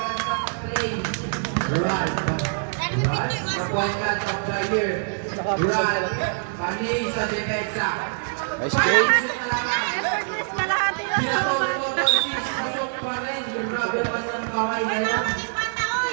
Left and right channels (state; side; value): silent; left; digital silence